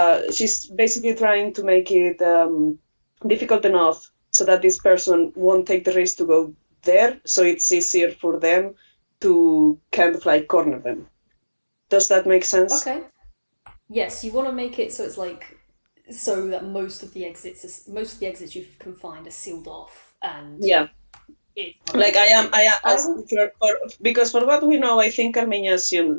difficult enough so that this person won't take the risk to go there, so it's easier for them to kind of like corner them. Does that make sense? Okay. Yes, you want to make it so it's like so that most of the exits you can find are sealed off, and Yeah. it's Like will- because for what we know, I think Carmina is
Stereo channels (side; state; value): both; inverted; correlation -1.00